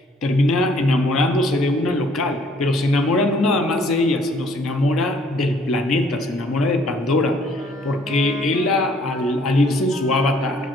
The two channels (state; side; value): normal; both; correlation 0.61